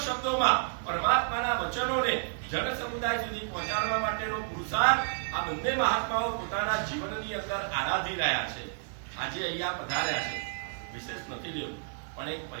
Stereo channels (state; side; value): silent; left; digital silence